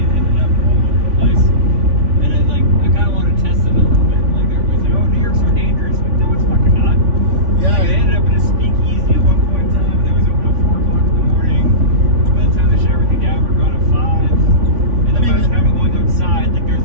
ended up all over the place. And I kind of want to test it a little bit. Like everybody's like, oh, New York's so dangerous. Like, no, it's fucking not. Yeah. Like, I ended up in a speakeasy at one point in time. That was open at 4 o'clock in the morning. By the time they shut everything down, we're gone at 5. And then by the time I'm going outside, like there's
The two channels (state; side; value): late; left; 3.5 ms